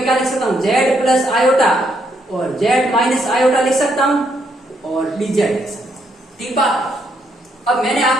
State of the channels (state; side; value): normal; both; correlation 0.75